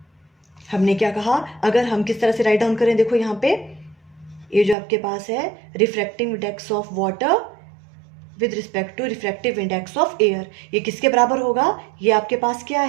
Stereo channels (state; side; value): drops out; left; at 4.8 s